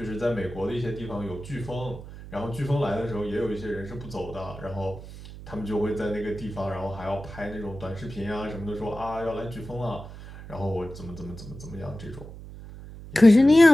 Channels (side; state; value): right; noise; hum, 14 dB below the sound